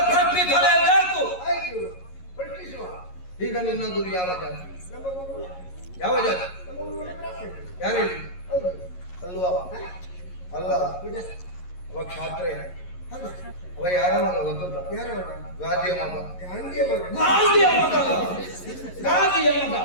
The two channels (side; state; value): right; late; 11 ms